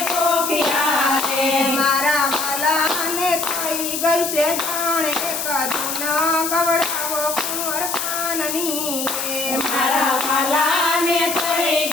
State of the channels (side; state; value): left; noise; hiss, 3 dB below the sound